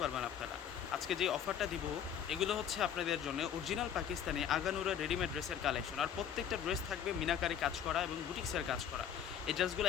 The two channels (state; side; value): quieter; right; 8.9 dB